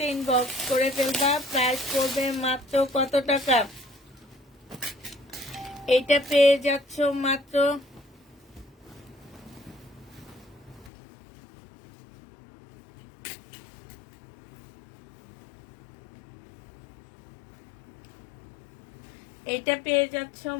ইনবক্স করে ফেলবা। প্রাইস পড়বে মাত্র কত টাকা? এটা পেয়ে যাচ্ছ মাত্র এটা পেয়ে যাচ্ছ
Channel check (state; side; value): drops out; right; at 10.9 s